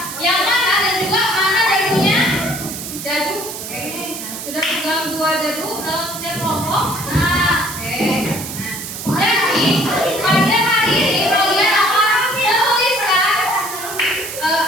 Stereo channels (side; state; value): right; noise; hiss, 8 dB below the sound